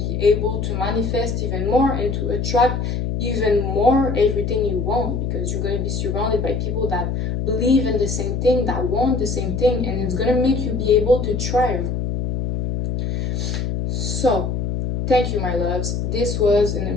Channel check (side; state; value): left; noise; hum, 1 dB below the sound